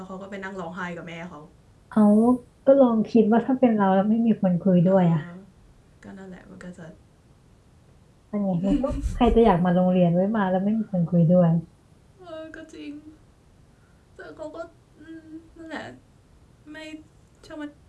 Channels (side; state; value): both; identical; correlation 1.00